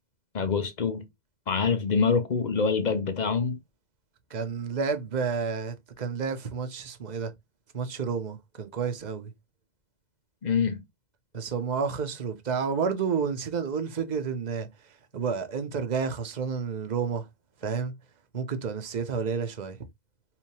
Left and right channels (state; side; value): late; right; 2.0 ms